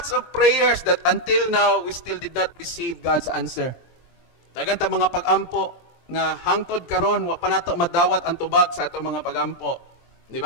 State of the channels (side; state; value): right; late; 23 ms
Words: of prayers that until now we still did not receive God's answer. Dagan ta mga pag-ampo nga hangtod karon wa pa nato madawat ang tubag sa ato mga pag-ampo. Di